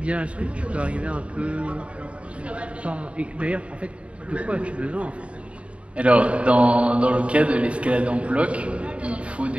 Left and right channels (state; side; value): late; left; 0.062 ms